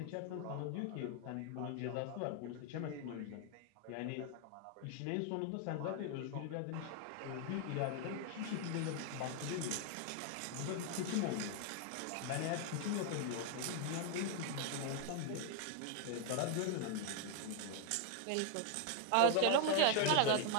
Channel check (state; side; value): different; both; correlation 0.00